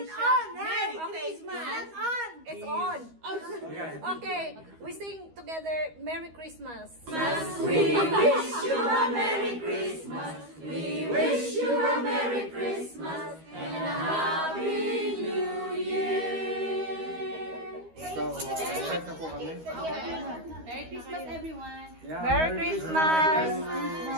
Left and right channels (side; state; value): left; late; 13 ms